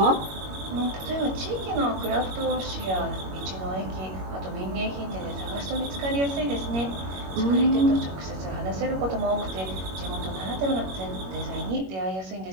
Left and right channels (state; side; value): late; left; 21 ms